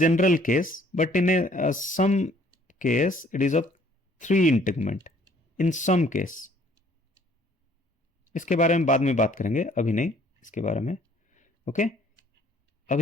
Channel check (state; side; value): normal; both; correlation 0.60